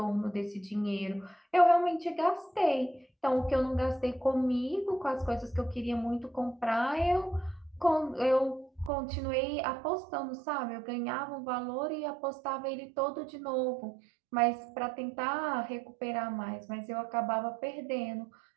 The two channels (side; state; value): left; drops out; at 8.9 s